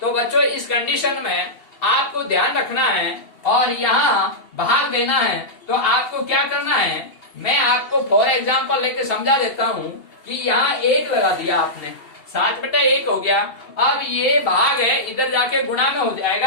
तो बच्चों इस कंडीशन में आपको ध्यान रखना है और यहाँ भाग देना है। तो आपको क्या करना है, मैं आपको फॉर एग्जाम्पल लेके समझा देता हूँ कि यहाँ 1 लगा दिया आपने, 7/1 हो गया। अब ये भाग है, इधर जाके गुणा में हो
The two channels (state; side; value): late; right; 2.7 ms